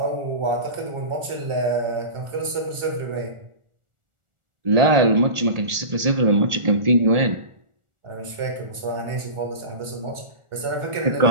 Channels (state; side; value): late; left; 1.4 ms